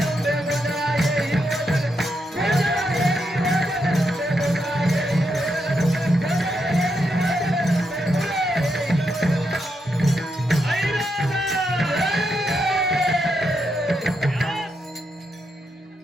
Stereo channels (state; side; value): normal; both; correlation 0.82